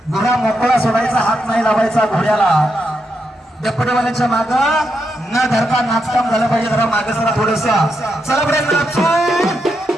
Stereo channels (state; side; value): normal; both; correlation 0.83